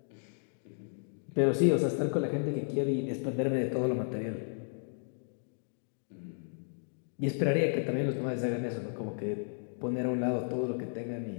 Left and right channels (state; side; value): silent; right; digital silence